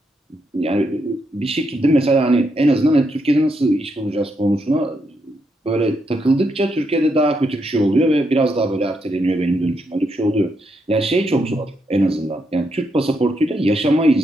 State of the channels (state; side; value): normal; both; correlation 0.80